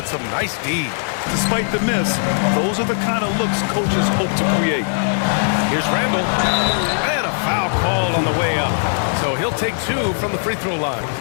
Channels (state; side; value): silent; right; 60 dB below the other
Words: some nice D. Despite the miss, those are the kind of looks coaches hope to create. Here's Randall. And a foul called on the way up. So he'll take 2 from the free throw line.